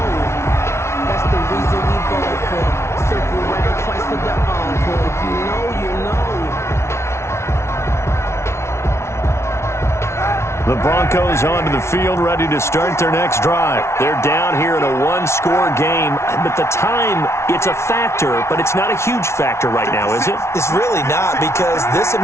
that's the reason we go for. Circle right twice for the encore. If you know, you know. The Broncos onto the field, ready to start their next drive. They're down here in a one-score game, but the time, it's a factor, but it's not a huge factor right now, is it? It's really not, because this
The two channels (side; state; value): right; late; 0.13 ms